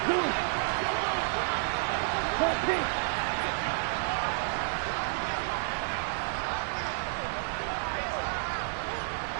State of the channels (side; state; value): left; silent; digital silence